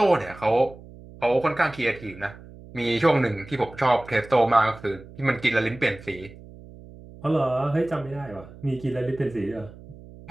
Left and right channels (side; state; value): right; noise; hum, 19 dB below the sound